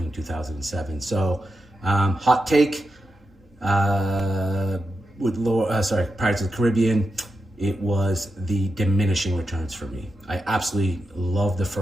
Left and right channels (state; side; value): normal; both; correlation 0.88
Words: 2007. So hot take with Pirates of the Caribbean, it was the diminishing returns for me. I absolutely love the